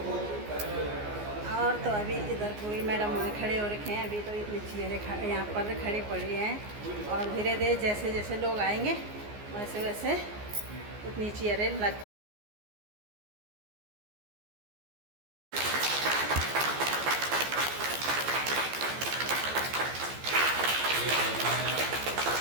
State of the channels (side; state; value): left; late; 14 ms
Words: और तो अभी इधर कोई मैडम वहाँ खड़े हो रखे हैं। अभी तो इतनी चेयरें यहाँ पर खड़ी पड़ी हैं, और धीरे धीरे जैसे जैसे लोग आएंगे वैसे वैसे उतनी चेयरें लग।